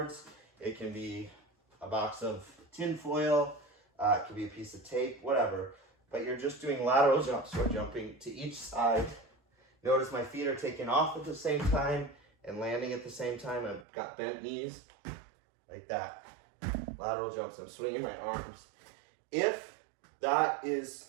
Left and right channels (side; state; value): left; drops out; at 13.9 s